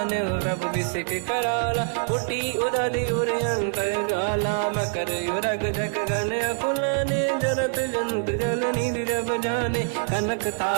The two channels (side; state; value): left; silent; 62 dB below the other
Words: रब बिसिक कराला, उठी उदधि उर अंकर गाला। मकर युरग जग गण अकुलाने, जरत जंत जल निधि जब जाने। कनक